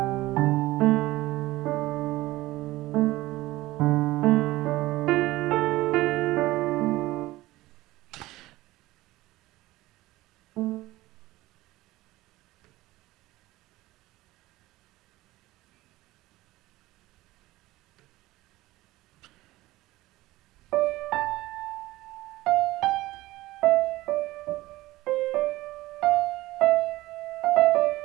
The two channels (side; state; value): left; quieter; 17.9 dB